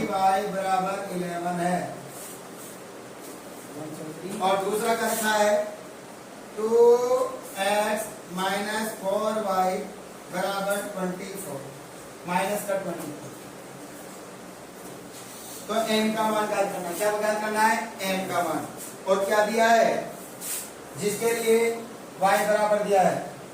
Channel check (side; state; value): both; identical; correlation 1.00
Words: बराबर 11 है। और दूसरा का रखा है 2x - 4y बराबर 24, माइनस का 24। तो m का मान ज्ञात करना है। क्या ज्ञात करना है? m का मान। और क्या दिया है? जिसके लिए y बराबर दिया है